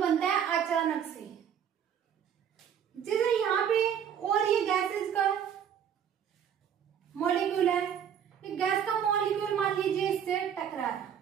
है अचानक से। जैसे यहाँ पे और ये गैसेस का मॉलिक्यूल है, ये गैस का मॉलिक्यूल मान लीजिए इससे टकरा,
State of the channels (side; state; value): left; quieter; 8.6 dB